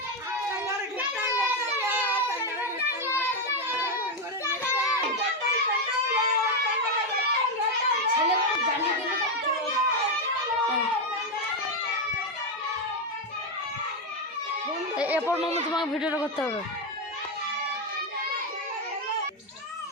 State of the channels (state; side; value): normal; both; correlation 0.06